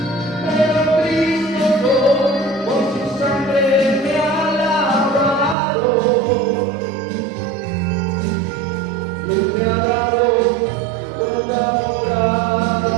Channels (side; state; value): left; drops out; at 5.6 s